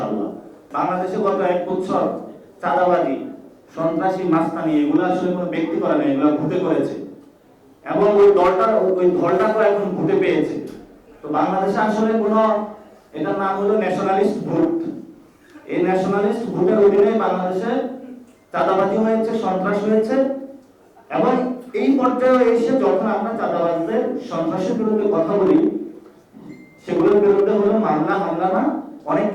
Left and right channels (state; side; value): identical; both; correlation 1.00